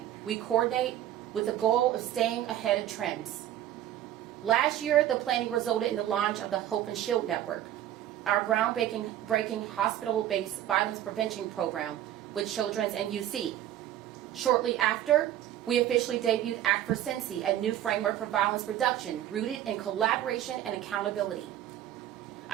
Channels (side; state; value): left; quieter; 12.2 dB